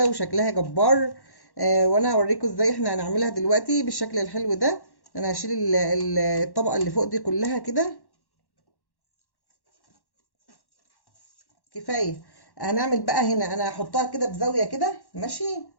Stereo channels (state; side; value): late; right; 1.1 ms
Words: وشكلها جبار. وانا هوريكم ازاي احنا هنعملها دلوقتي بالشكل الحلو ده. انا هشيل الطبقة اللي فوق دي كلها كده. كفاية. هنعمل بقى هنا، انا هحطها كده بزاوية كده. ماشي،